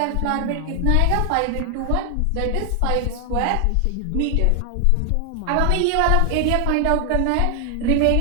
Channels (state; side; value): different; both; correlation 0.00